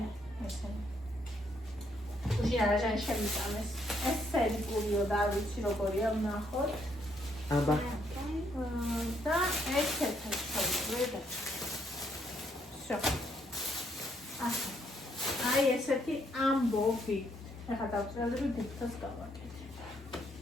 ესენი. უშინ არაჟანი შევიტანეს. ეს სერიკულიო და არ ვიცი როგორია ვნახოთ. აბა. და ესეთი შევიდე. всё. აი ესეთი ამბობი. ეხლა დავწერდი დიფტოს გავაკეთე.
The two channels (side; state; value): both; normal; correlation 0.72